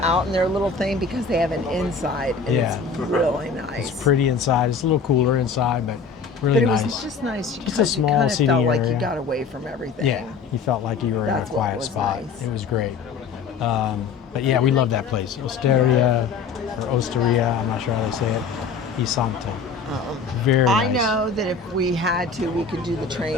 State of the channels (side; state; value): right; quieter; 5.2 dB